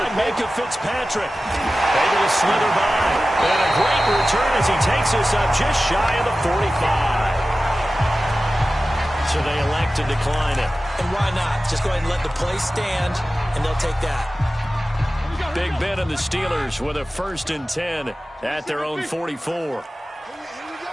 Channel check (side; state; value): both; normal; correlation 0.95